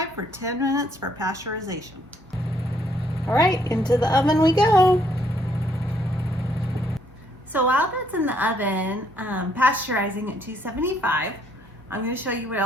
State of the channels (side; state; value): both; normal; correlation 0.69